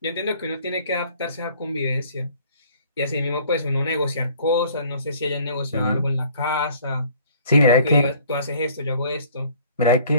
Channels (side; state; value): both; inverted; correlation -0.55